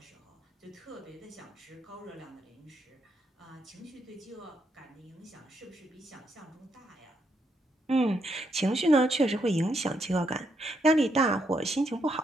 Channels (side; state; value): both; normal; correlation 0.77